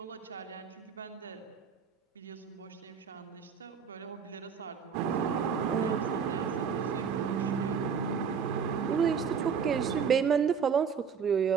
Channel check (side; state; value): left; quieter; 6.6 dB